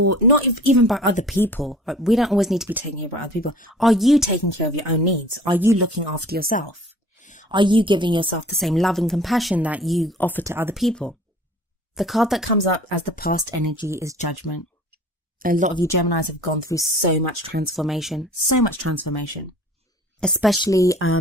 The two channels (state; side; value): normal; both; correlation 0.47